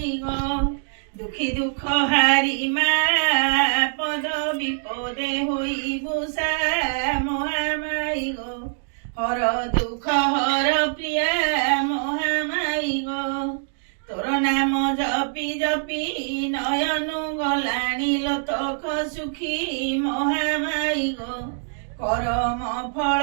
ଗୋ দুঃখী দুঃখ হারি মা পদ বিপদে হইবু সা মহামাই গো হর দুঃখ হর প্রিয়া মহামাই গো তোর নাম জপি জপি নয়নু গলাণী লোতক সুখী মহামাই গো করম ফল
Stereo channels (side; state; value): left; silent; digital silence